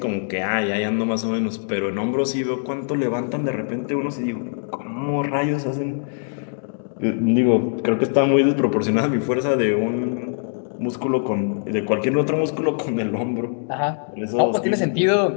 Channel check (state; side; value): silent; right; digital silence